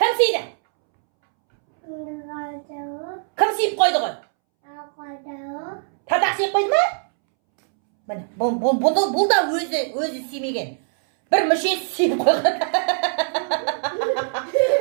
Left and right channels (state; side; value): silent; left; 64 dB below the other